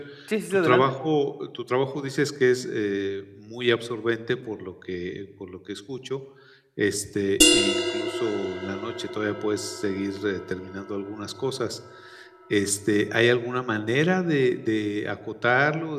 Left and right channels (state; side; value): identical; both; correlation 1.00